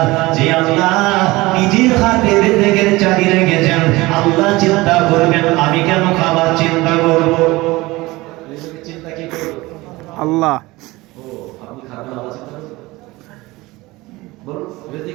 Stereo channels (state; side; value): quieter; left; 20.7 dB